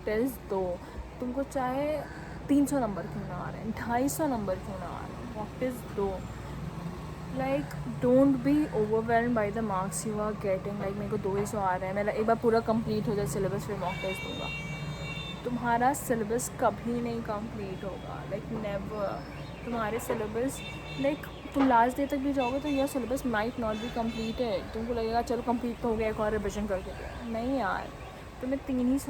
test दो. तुमको चाहे 300 नंबर क्यों ना आ रहे हैं, 250 नंबर क्यों ना आ रहे हैं, मॉक टेस्ट दो. Like don't be overwhelm by the marks you are getting. Like मेरे को 200 आ रहे हैं, मेरा एक बार पूरा कंप्लीट हो जाए सिलेबस, फिर मॉक टेस्ट दूँगा. तुम्हारा सिलेबस कभी नहीं कंप्लीट होगा. Like never. तुम्हारे सिलेबस, लाइक तुम लास्ट डे तक भी जाओगे तो यह syllabus might not be completed. तुमको लगेगा चलो कंप्लीट तो हो गया, एक और रिविजन करके दो. नहीं यार, तुम्हें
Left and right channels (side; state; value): both; identical; correlation 1.00